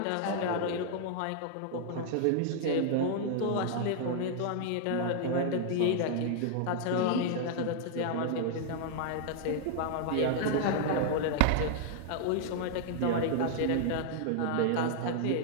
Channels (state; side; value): different; both; correlation 0.00